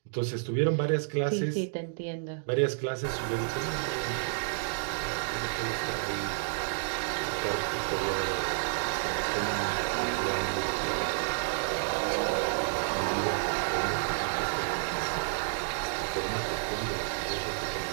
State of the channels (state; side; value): silent; left; digital silence